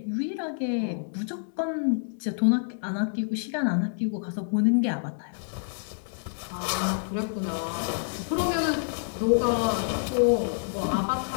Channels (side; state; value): right; silent; digital silence